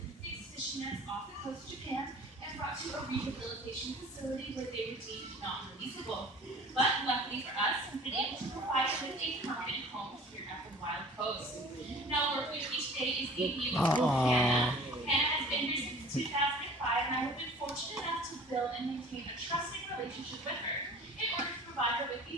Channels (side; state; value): both; normal; correlation 0.46